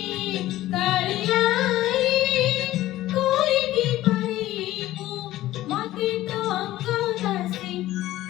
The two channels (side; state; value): right; quieter; 15.3 dB